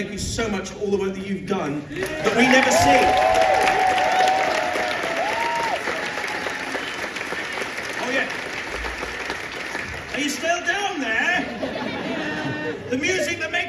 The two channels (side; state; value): both; identical; correlation 1.00